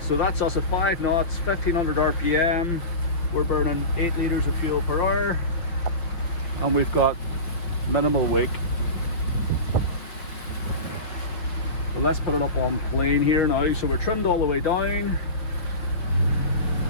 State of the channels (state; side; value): late; right; 5.6 ms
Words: that's us at 5 knots, 1500 RPM, we're burning 8 litres of fuel per hour, and we've got minimal wake. But let's put it up on plane here now. So we're trimmed all the way down,